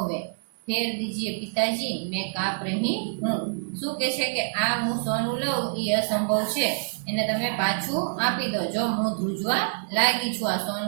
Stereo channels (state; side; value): silent; left; digital silence